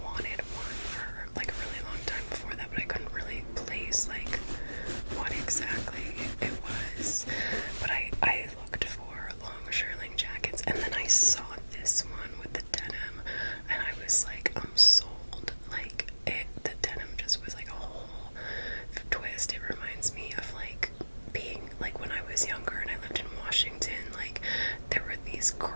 wanted one for like a really long time before that, but I couldn't really place like what exactly it was. But I looked for long shearling jackets, and then I saw this one with the denim, and I was like, I'm sold. Like the denim just was like a whole twist. It reminds me of like being like when I was younger and I lived in Washington. Like there were these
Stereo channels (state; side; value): inverted; both; correlation -1.00